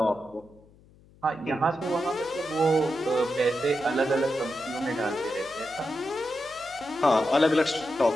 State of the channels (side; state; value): left; noise; hum, 27 dB below the sound